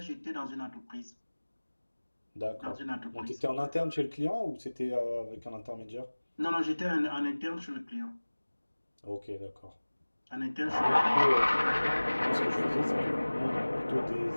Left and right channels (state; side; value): inverted; both; correlation -1.00